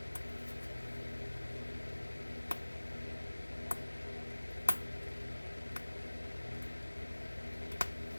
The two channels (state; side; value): inverted; both; correlation -1.00